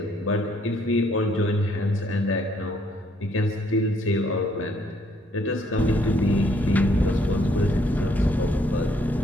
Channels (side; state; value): both; normal; correlation 0.67